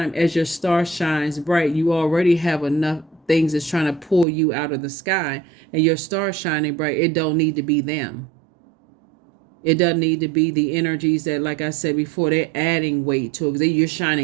as your star shines bright, you already have enough things that's trying to pull you out of the sky, and your star shining bright. It don't need to be them. It doesn't need to be the energies that, like I said before, they're adding weight to it. You're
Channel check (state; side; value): drops out; left; at 4.2 s